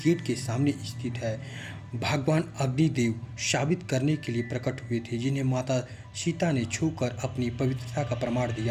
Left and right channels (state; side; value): identical; both; correlation 1.00